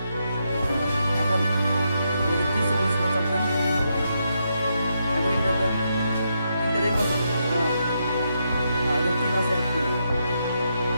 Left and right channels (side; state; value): both; inverted; correlation -0.81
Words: এখন ওই যে 30 সেকেন্ড চাপ দেন, এখন ইন্টার দেন, ইন্টার এই পাশে, এখন 3 আছে এক করে,